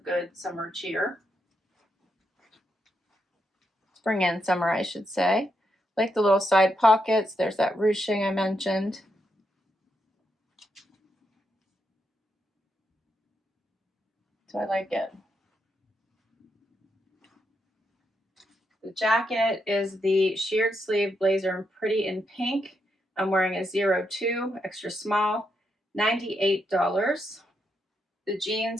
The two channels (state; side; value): normal; both; correlation 0.81